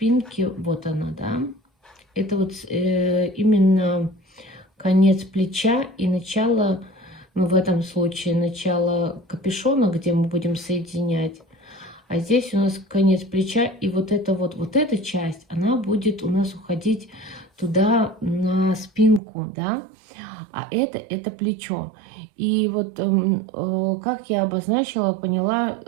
вот она, да. Это вот именно конец плеча и начало. Ну, в этом случае начало капюшона, где мы будем соединять. А здесь у нас конец плеча. И вот эта часть, она будет у нас уходить туда на спинку, да. А это плечо. И вот как я обозначила, поняла,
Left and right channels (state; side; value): drops out; left; at 19.2 s